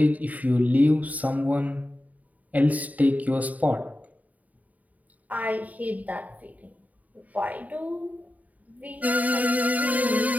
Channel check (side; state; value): left; late; 0.074 ms